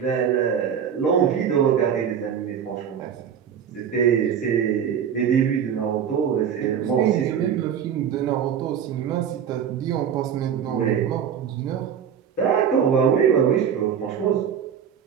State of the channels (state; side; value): quieter; left; 8.1 dB